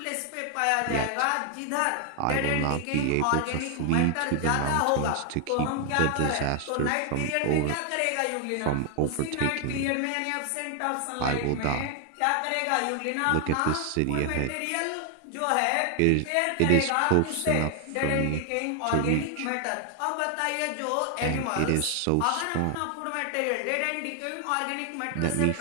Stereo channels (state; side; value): different; both; correlation 0.00